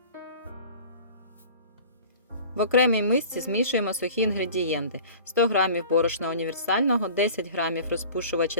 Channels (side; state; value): both; inverted; correlation -0.42